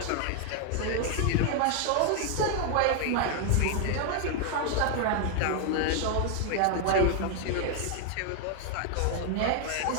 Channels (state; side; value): different; both; correlation 0.00